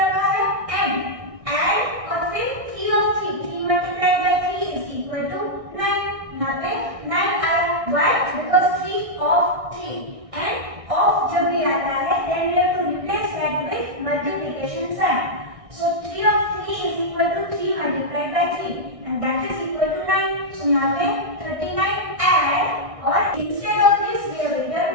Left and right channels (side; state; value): left; late; 1.6 ms